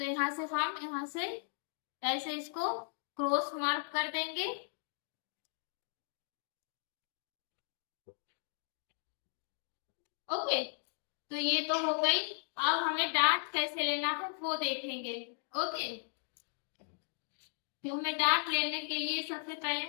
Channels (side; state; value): right; silent; digital silence